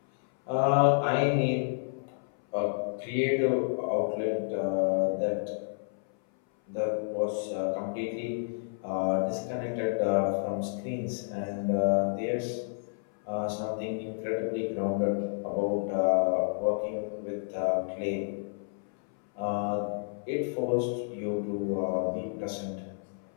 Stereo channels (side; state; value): right; silent; 58 dB below the other